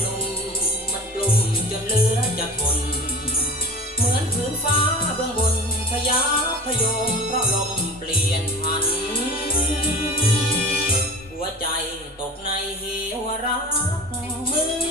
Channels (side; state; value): both; normal; correlation 0.36